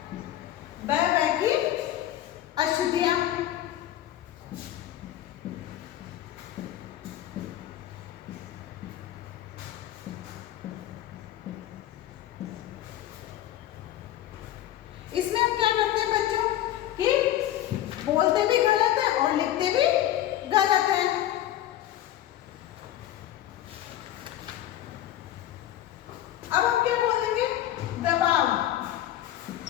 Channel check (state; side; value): quieter; right; 12.9 dB